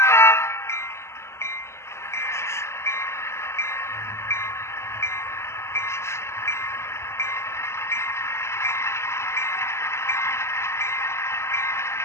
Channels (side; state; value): right; late; 0.13 ms